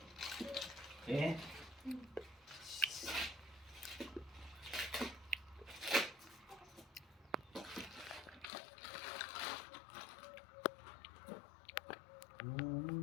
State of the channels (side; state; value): right; drops out; at 8.5 s